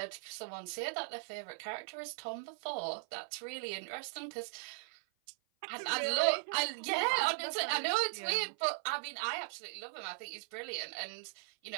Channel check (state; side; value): silent; left; 52 dB below the other